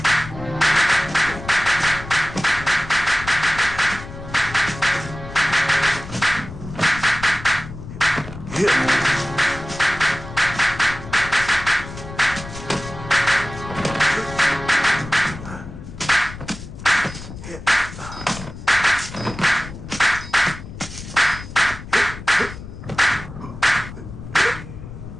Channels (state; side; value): noise; left; rumble, 12 dB below the sound